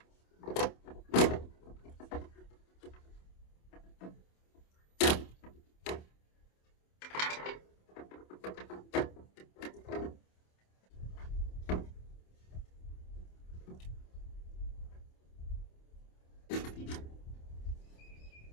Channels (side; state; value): right; late; 27 ms